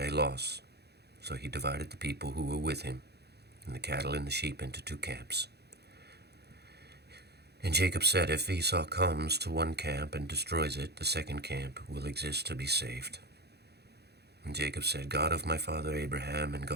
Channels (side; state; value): left; late; 0.48 ms